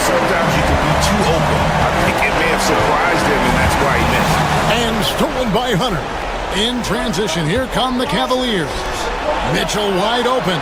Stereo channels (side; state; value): both; identical; correlation 1.00